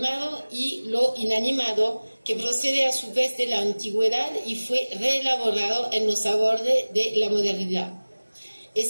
y lo inanimado que procede a su vez de la antigüedad y fue reelaborado en los abordes de la modernidad.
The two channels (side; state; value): both; inverted; correlation -1.00